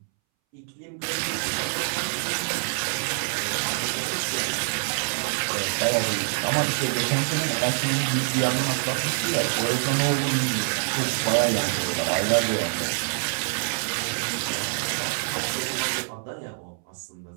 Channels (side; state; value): left; silent; 61 dB below the other